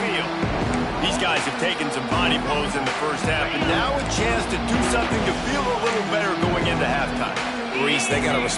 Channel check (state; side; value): identical; both; correlation 1.00